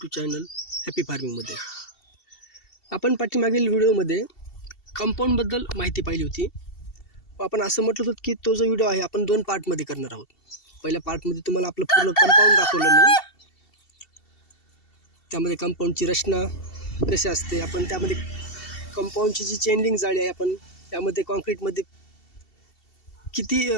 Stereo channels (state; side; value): late; right; 2.7 ms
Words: चॅनल हॅपी फार्मिंगमध्ये. आपण पाठीमागील व्हिडिओमध्ये कंपाऊंडबद्दल माहिती पाहिली होती. आपण असं म्हटलं होतं की तो जो व्हिडिओ आहे आपण 2 पार्टमध्ये करणार आहोत. पहिल्या पार्टमध्ये तुम्हाला आपलं पूर्ण कंपाऊंड दाखवलं मी, त्यामध्ये कंपाऊंडची रचना कशी असते, आपण त्यामध्ये कंपाऊंडची जी चेन जाळी आहे आपण त्यामध्ये कॉन्क्रीटमध्ये किती